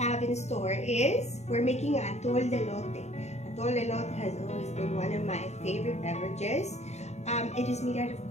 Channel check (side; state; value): right; late; 0.32 ms